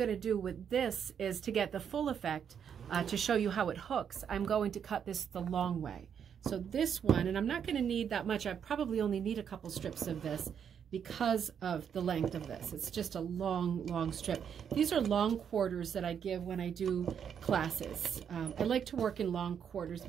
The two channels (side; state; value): left; quieter; 7.9 dB